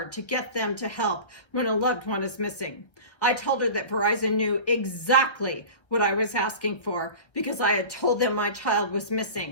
to get them to help when a loved one is missing. I told her that Verizon knew exactly what I was asking for because I had told them my child was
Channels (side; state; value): right; late; 1.3 ms